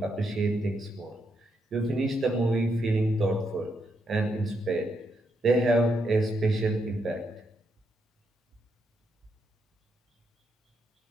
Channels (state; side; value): normal; both; correlation 0.80